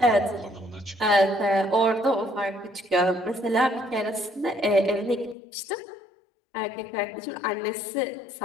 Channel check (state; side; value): drops out; right; at 5.4 s